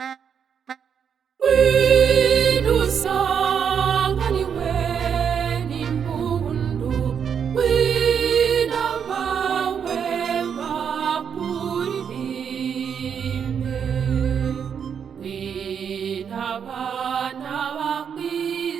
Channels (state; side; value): quieter; left; 7.5 dB